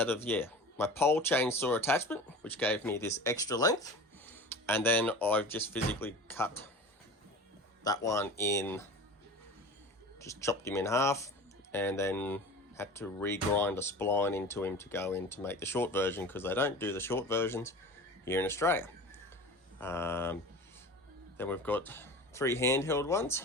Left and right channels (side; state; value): both; normal; correlation 0.35